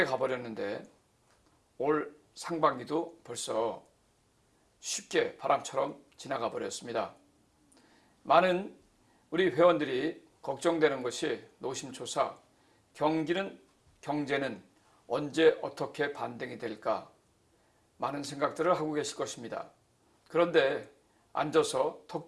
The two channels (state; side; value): identical; both; correlation 1.00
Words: 가버렸는데 올 상반기도 벌써 쉽게 바람처럼 지나가 버렸습니다. 많은 우리 회원들이 걱정되는 것이 노심초사, 경제는 언제 어떻게 반등이 될까, 많은 생각들을 하고 계실 것입니다. 그런데 앉아서 턱